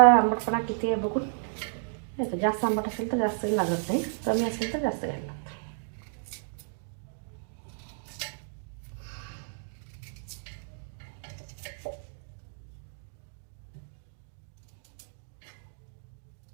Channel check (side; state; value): left; silent; digital silence